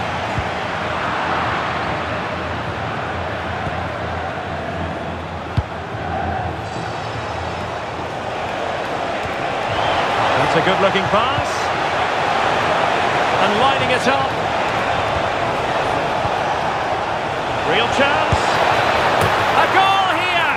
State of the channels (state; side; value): identical; both; correlation 1.00